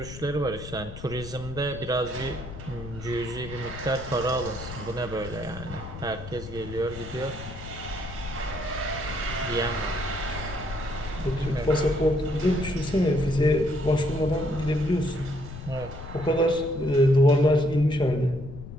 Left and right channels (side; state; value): left; noise; rumble, 12 dB below the sound